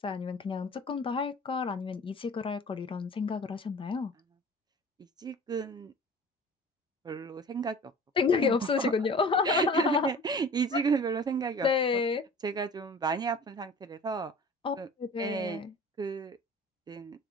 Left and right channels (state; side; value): normal; both; correlation 0.43